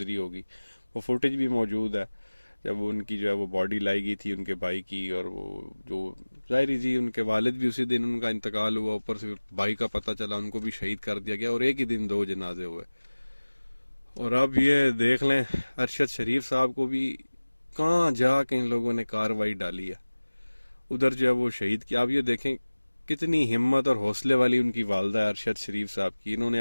ہوگی۔ وہ فوٹیج بھی موجود ہے جب ان کی جو ہے وہ باڈی لائی گئی تھی ان کے بھائی کی، اور وہ جو ظاہری جی ان کے والد بھی اسی دن ان کا انتقال ہوا، اوپر سے بھائی کا پتہ چلا، ان کو بھی شہید کر دیا گیا، اور ایک ہی دن 2 جنازے ہوئے۔ اور اب یہ دیکھ لیں ارشد شریف صاحب کو بھی کہاں جا کے ان لوگوں نے کاروائی ڈالی ہے، ادھر جو ہے وہ شہید کیا۔ اب یہ دیکھیں کتنی ہمت اور حوصلے والی ان کی والدہ ارشد شریف صاحب کی، انہوں نے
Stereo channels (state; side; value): inverted; both; correlation -1.00